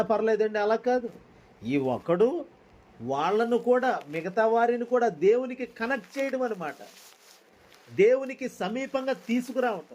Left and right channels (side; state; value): both; identical; correlation 1.00